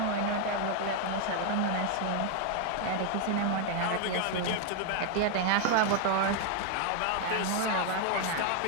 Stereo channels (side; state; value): both; different; correlation 0.00